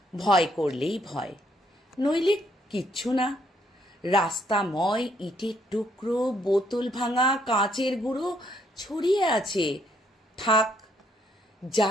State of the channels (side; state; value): both; normal; correlation 0.70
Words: ভয় করলেই ভয়, নইলে কিচ্ছু না। রাস্তাময় ইটের টুকরো, বোতল ভাঙা, কাঁচের গুঁড়ো ছড়িয়ে আছে। থাক,